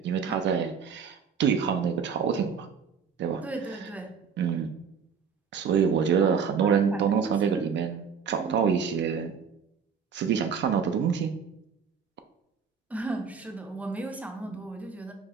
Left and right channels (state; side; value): quieter; left; 6.5 dB